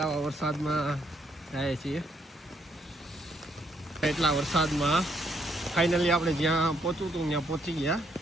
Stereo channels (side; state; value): both; normal; correlation 0.72